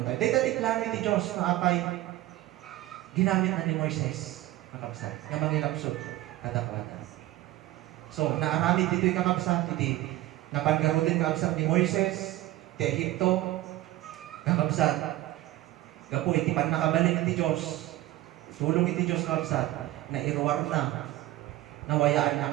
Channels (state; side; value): quieter; left; 16.2 dB